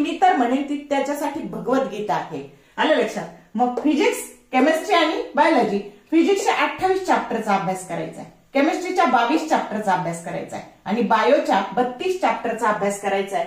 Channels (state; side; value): identical; both; correlation 1.00